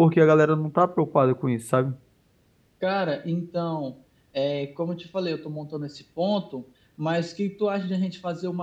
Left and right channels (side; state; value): both; identical; correlation 1.00